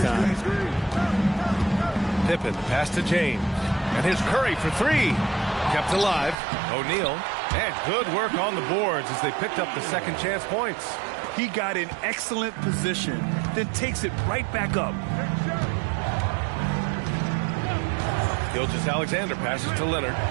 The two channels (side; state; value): left; drops out; at 6.4 s